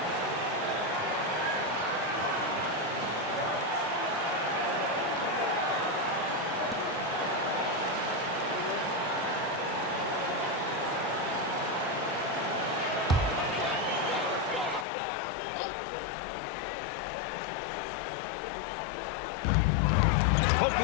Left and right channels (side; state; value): right; drops out; at 14.9 s